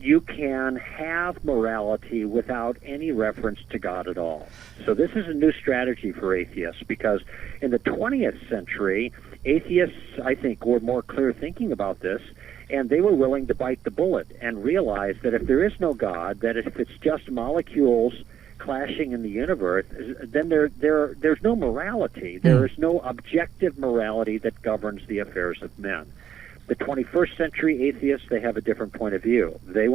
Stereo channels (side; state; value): left; quieter; 9.5 dB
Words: you can have morality without any reference to God at all. So this is a new strategy for atheists, because in the 20th century, atheists, I think, were more clear thinking about this, and they were willing to bite the bullet and realize that if there is no God, that if it's just molecules clashing in the universe, then there's no morality. There is no objective morality that governs the affairs of men. The 21st century atheists, they have a different point of view. They